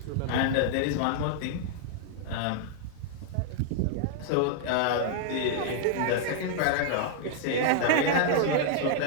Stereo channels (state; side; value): different; both; correlation -0.01